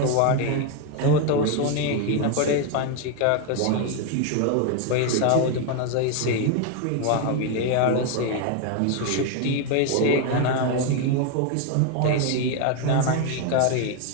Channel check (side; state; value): both; different; correlation 0.01